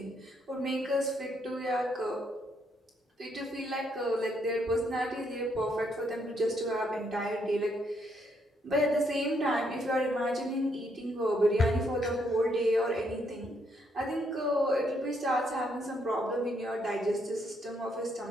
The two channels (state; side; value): normal; both; correlation 0.74